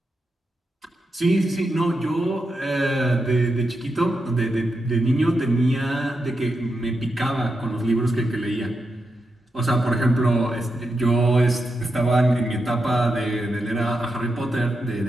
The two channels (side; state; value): both; normal; correlation 0.86